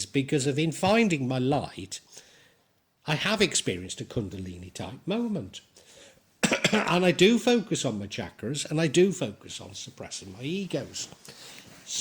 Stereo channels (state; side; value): identical; both; correlation 1.00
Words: because in finding my light, I have experienced a Kundalini type moment. And I do focus on my chakras, and I do focus on suppressing my egos.